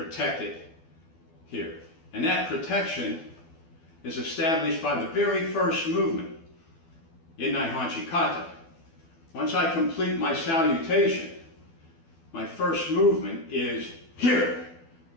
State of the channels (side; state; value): right; late; 12 ms